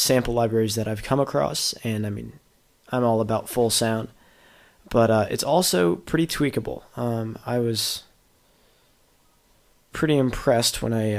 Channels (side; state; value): both; identical; correlation 1.00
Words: libraries that I've come across. And I mean, I'm all about full sound, but it's also pretty tweakable. I was pretty impressed when